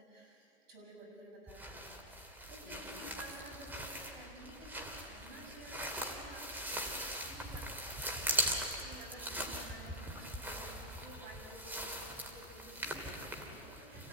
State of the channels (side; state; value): both; normal; correlation -0.07